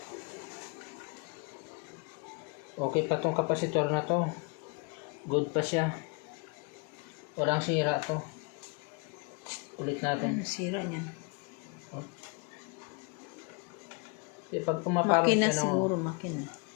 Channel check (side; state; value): right; quieter; 32.7 dB